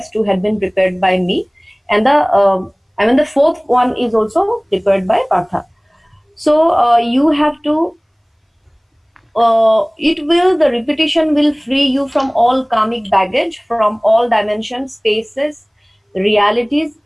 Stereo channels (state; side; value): identical; both; correlation 1.00